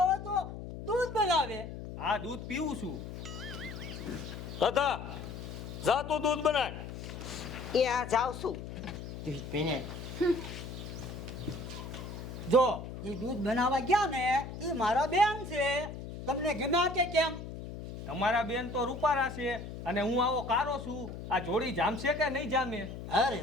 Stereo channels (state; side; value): noise; left; hum, 9 dB below the sound